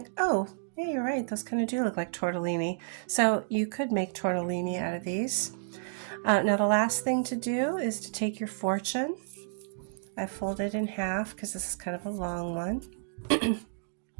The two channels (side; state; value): left; silent; digital silence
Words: "Oh, yeah, you're right. Those kind of do look like tortellini." So you could make tortellini out of these. Now the last thing to do is to take your fortune. I fold it in half because this is kind of a long one.